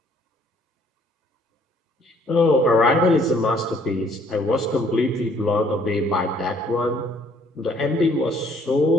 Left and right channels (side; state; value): both; normal; correlation 0.62